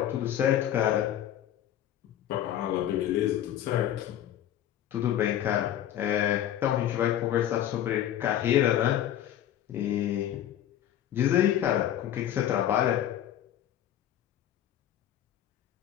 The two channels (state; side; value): quieter; right; 11.4 dB